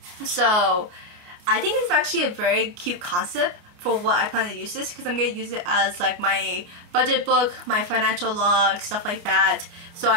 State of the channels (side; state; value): left; late; 28 ms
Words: So I think it's actually a very cute concept for what I plan to use this, because I'm going to use it as like my budget book, my financial log, stuff like that. So